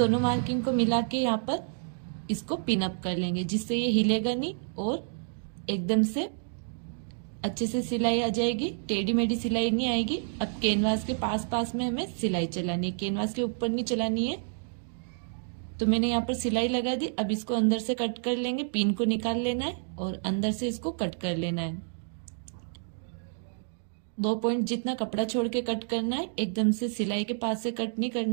मार्किंग को मिला के यहाँ पर इसको पिन अप कर लेंगे, जिससे ये हिलेगा नहीं और एकदम से अच्छे से सिलाई आ जाएगी, टेढ़ी मेढ़ी सिलाई नहीं आएगी। अब कैनवास के पास में हमें सिलाई चलानी है, कैनवास के ऊपर नहीं चलानी है। तो मैंने यहाँ पर सिलाई लगा दी। अब इसको अंदर से कट कर लेंगे, पिन को निकाल लेना है और अंदर से इसको कट कर लेना है। 2 पॉइंट जितना कपड़ा छोड़ के कट करना है, एकदम से सिलाई के पास से कट नहीं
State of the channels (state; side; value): silent; left; digital silence